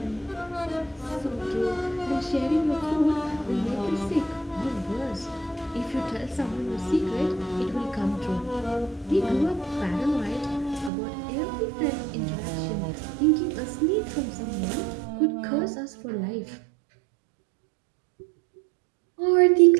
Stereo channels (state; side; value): drops out; left; at 10.9 s